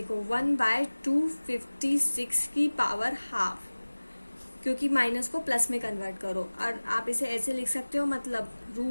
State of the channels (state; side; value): inverted; both; correlation -1.00